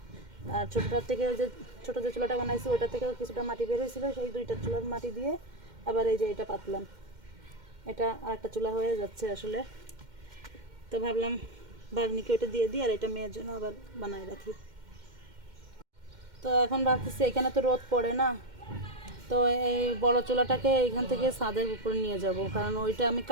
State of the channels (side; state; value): left; late; 2.1 ms